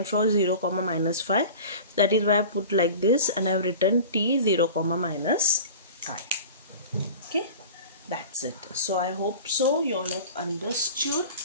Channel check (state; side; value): inverted; both; correlation -0.38